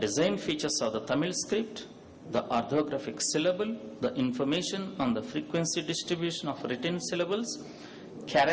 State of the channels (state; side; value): identical; both; correlation 1.00